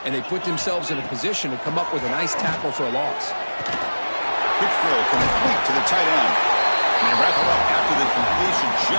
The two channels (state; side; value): inverted; both; correlation -1.00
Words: and they put themselves in a position to come up with a nice tackle for a loss. Quick throw complete to the tight end. And they wrap it up after the completion